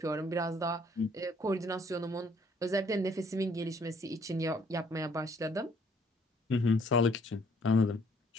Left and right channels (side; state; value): both; normal; correlation 0.62